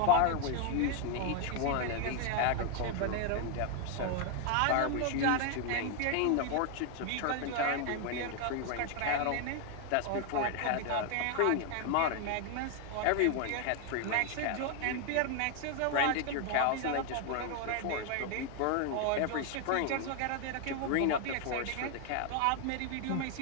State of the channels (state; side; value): different; both; correlation 0.00